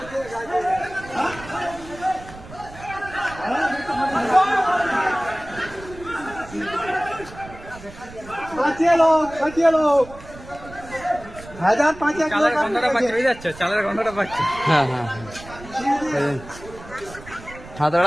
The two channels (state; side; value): noise; right; rumble, 17 dB below the sound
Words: বাঁচিয়ে লোক 1005 চালের গন্ধটা পাচ্ছি, বুঝে যাচ্ছে চালের গন্ধটা পাচ্ছি। হ্যাঁ হ্যাঁ হ্যাঁ, হাত